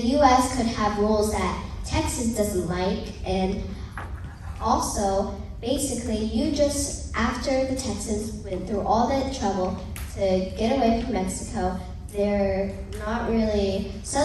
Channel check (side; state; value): both; identical; correlation 1.00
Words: could have rules that Texas doesn't like, and also, basically, after the Texans went through all that trouble to get away from Mexico, they're not really